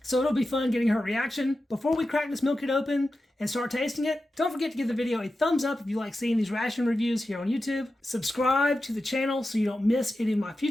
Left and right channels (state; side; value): normal; both; correlation 0.92